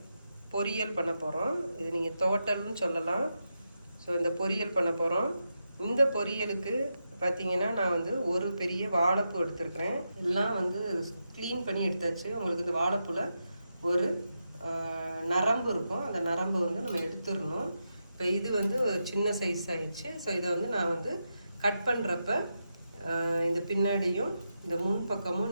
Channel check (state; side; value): inverted; both; correlation -0.87